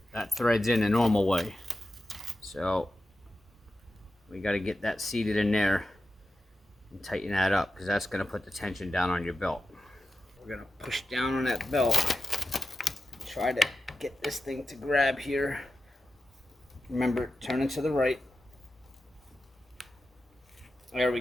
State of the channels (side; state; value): both; normal; correlation 0.91